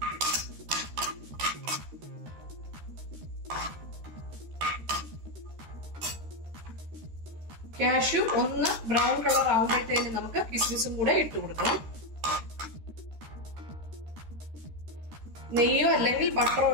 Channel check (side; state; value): left; late; 13 ms